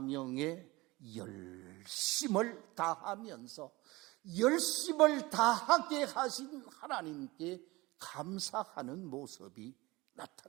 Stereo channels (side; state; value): left; quieter; 21.7 dB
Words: 열심을 다하면서 열심을 다하게 하신 하나님께 감사하는 모습이